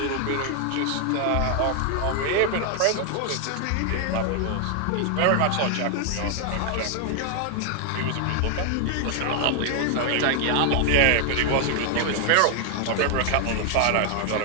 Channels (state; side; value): different; both; correlation 0.00